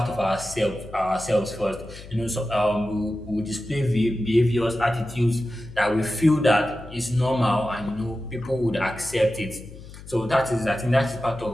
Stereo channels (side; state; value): left; noise; hum, 16 dB below the sound